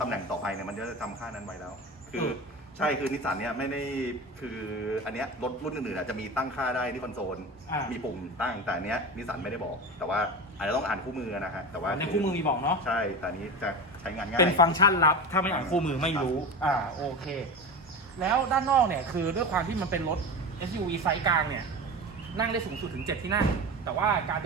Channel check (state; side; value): normal; both; correlation 0.26